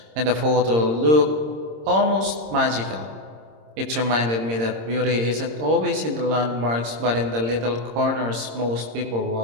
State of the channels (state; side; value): late; left; 26 ms